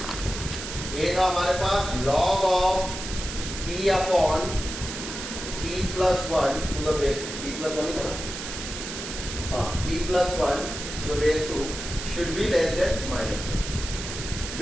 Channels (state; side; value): noise; right; hiss, 7 dB below the sound